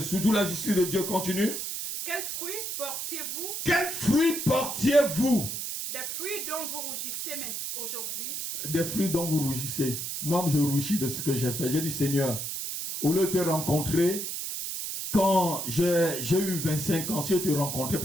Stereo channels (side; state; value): right; noise; hiss, 4 dB below the sound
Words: surtout la justice de Dieu. Continue. Quels fruits portiez-vous? Quels fruits portiez-vous? Des fruits dont vous rougissez aujourd'hui. Des fruits dont vous rougissez. Moi, je rougis de ce que j'ai fait. J'ai dit, Seigneur, au lieu de te rencontrer, quand j'ai eu 25 ans, si je te rencontrais